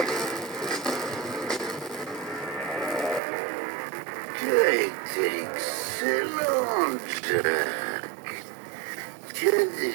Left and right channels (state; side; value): drops out; left; at 3.2 s